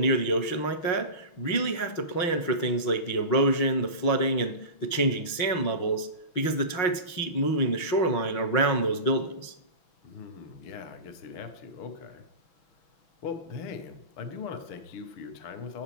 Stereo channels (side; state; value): right; late; 6.1 ms